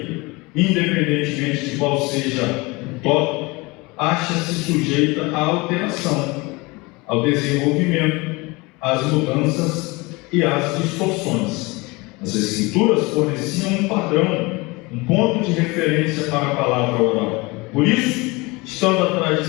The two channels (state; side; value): quieter; right; 24.7 dB